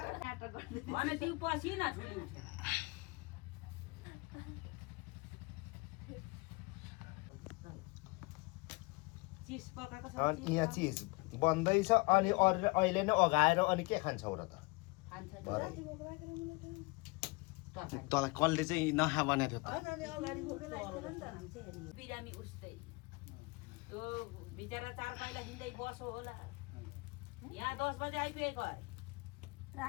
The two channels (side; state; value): right; quieter; 26.5 dB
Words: भने तिमी पसिना ठुली उठेर चिज पकाएको छ अनि यहाँ चिज बन्दैछ अनि अरू अहिले नै अगाएर अनि के खान्छौ र त खान्छ तँलाई कसले चाहिँ नखा बनाएको थियो त अगाडि फोटो बिरामी उस्तै त्यो बिचरा 4 पाइला हिँड्दै बसो होला यहाँ 10 बजे आइपुगेको अरे